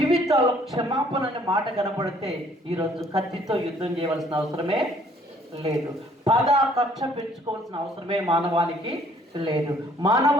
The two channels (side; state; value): both; normal; correlation 0.60